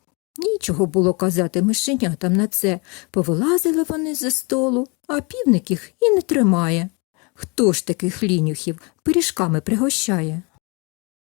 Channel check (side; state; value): right; quieter; 30.4 dB